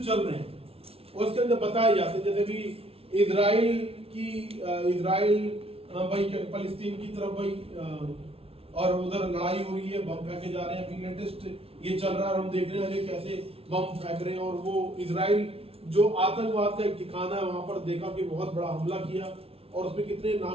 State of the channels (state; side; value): late; left; 0.28 ms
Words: चल रहे हैं और उसके अंदर बताए जाते हैं। जैसे भी इजराइल भाई फलस्तीन की तरफ भाई और उधर लड़ाई हो रही है, बम फेंके जा रहे हैं। अभी लेटेस्ट ये चल रहा है, हम देख रहे हैं कैसे बम फेंक रहे हैं। और वो इजराइल जो आतंकवाद का एक ठिकाना है, वहां पर देखा कि बहुत बड़ा हमला किया और उसमें कितने